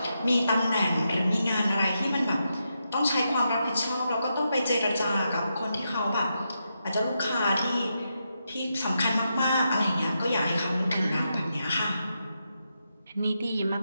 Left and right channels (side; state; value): both; inverted; correlation -0.85